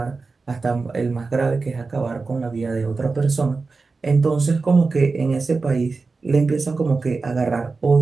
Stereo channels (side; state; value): left; quieter; 4.1 dB